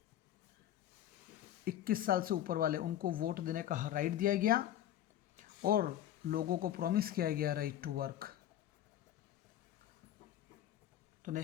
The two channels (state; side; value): quieter; right; 11.8 dB